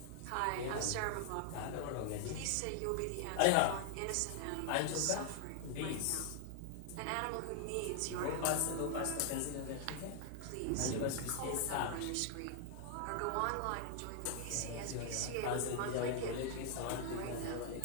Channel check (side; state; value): both; different; correlation 0.00